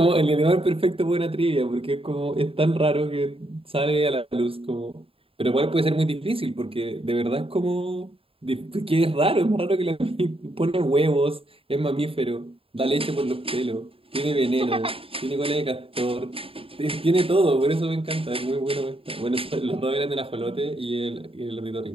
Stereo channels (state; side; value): late; left; 0.27 ms